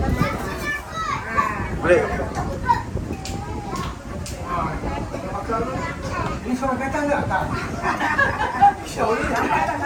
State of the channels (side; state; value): both; identical; correlation 1.00